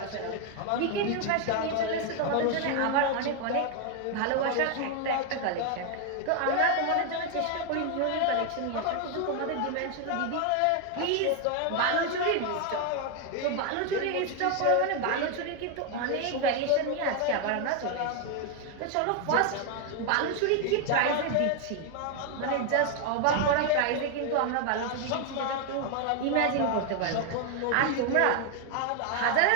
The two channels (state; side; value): different; both; correlation 0.01